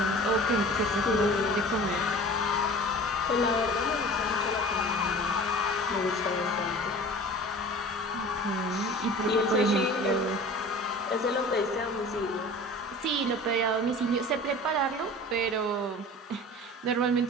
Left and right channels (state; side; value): normal; both; correlation 0.41